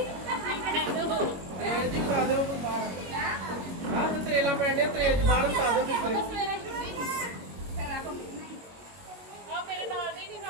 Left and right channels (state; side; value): late; left; 22 ms